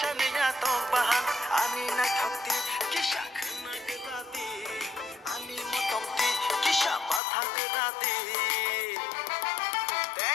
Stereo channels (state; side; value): drops out; right; at 7.2 s